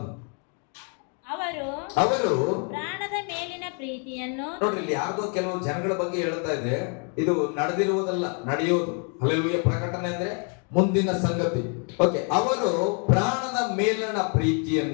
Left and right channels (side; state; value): right; quieter; 40.0 dB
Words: ಅವರು ಪ್ರಾಣದ ಮೇಲಿನ ಪ್ರೀತಿಯನ್ನು ನೋಡ್ರಿ, ಇಲ್ಲಿ ಯಾರ್ದೋ ಕೆಲವು ಜನಗಳ ಬಗ್ಗೆ ಹೇಳ್ತಾ ಇದೆ. ಇದು ನಡೆದಿರುವುದಲ್ಲ, ನಡೆಯೋದು. ಹಲ್ಲೆಲೂಯಾ. ಪ್ರಕಟಣೆ ಅಂದ್ರೆ ಮುಂದಿನ ಸಂಗತಿ. ಓಕೆ, ಅವರು ಪ್ರಾಣದ ಮೇಲಿನ